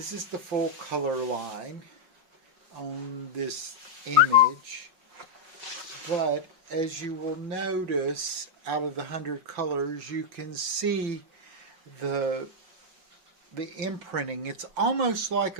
is the full color line on this image. But as you will notice, out of the 100 colors, you can see the imprinting. It's almost like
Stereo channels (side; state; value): left; late; 5.4 ms